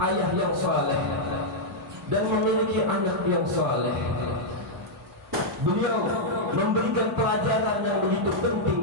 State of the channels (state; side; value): normal; both; correlation -0.05